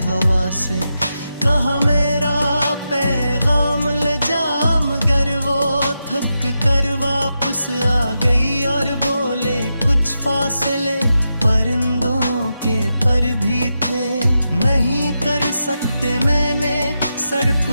हवा से कहा मेरा पैगाम ले जा, मगर वो थक कर वापस आ गई और बोले कुछ फासले परिंदों के पर भी थे। नहीं कर सकते मैंने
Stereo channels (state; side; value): inverted; both; correlation -0.88